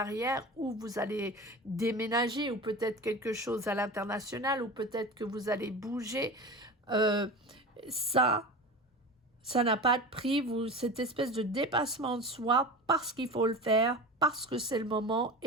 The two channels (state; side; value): normal; both; correlation 0.30